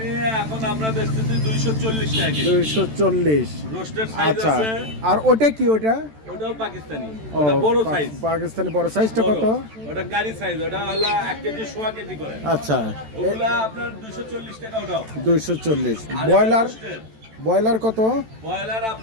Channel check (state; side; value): late; left; 14 ms